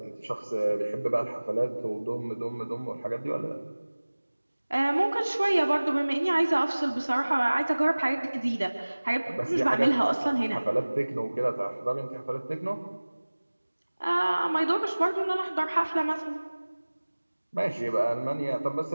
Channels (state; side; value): inverted; both; correlation -1.00